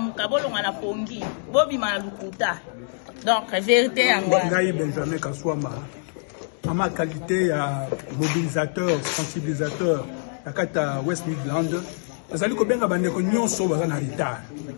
bolonga na pongi bobima na lukuta. Donc, vérité à moi. Benjamin Kaswama, à ma qualité à mobilisateur, sensibilisateur, à West Midland, vous allez bien que nous sommes en retard.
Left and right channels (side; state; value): right; silent; digital silence